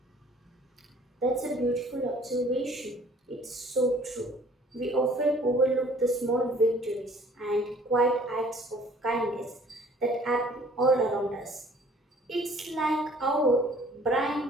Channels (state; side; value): normal; both; correlation 0.55